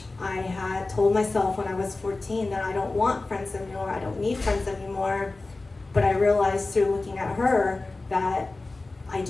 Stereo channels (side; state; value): right; quieter; 3.3 dB